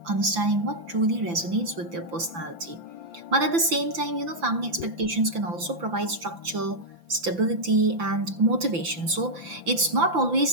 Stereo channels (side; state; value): left; late; 5.9 ms